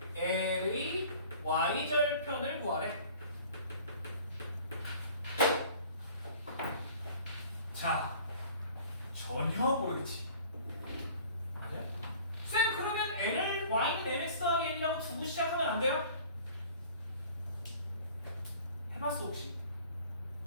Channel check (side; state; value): both; inverted; correlation -0.48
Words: L의 Y절편을 구하래. 자, 전혀 모르겠지. 맞아요? 쌤, 그러면 L을 Y는 MX 더하기 N이라고 두고 시작하면 안 돼요? 해봤어 혹시?